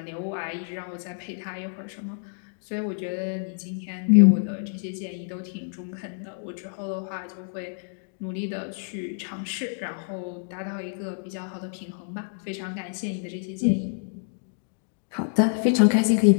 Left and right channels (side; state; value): right; silent; digital silence